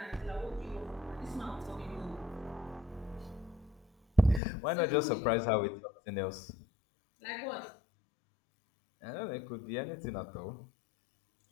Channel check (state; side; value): drops out; right; at 4.4 s